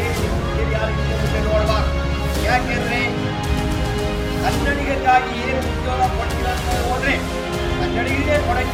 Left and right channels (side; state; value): both; identical; correlation 1.00